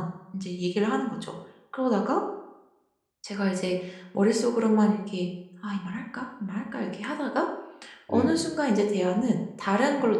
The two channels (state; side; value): identical; both; correlation 1.00